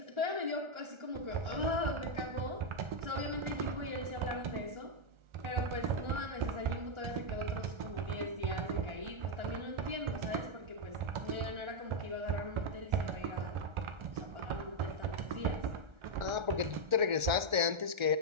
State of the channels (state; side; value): late; left; 1.4 ms